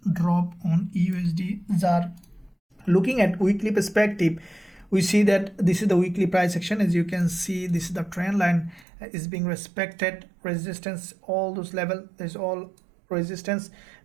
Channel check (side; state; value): left; drops out; at 8.8 s